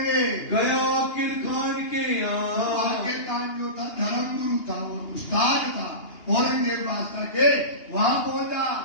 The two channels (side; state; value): right; late; 2.8 ms